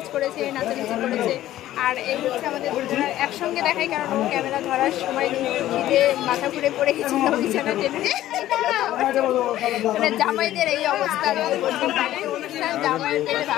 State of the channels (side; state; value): right; quieter; 13.8 dB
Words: করেছে, নাচানাচি করেছে। আর এই হচ্ছে আমাদের দুজনের একসঙ্গে দেখাই, কারণ ও ক্যামেরা ধরার সময় খিদে মাথা ঘুরে পড়ে গেছিল বিছানা টেনে। মানে জামাইদের এই অবস্থা, অনুষ্ঠান জামাইয়ের পেটে